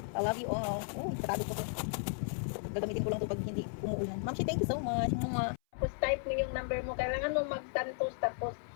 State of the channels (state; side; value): silent; right; 55 dB below the other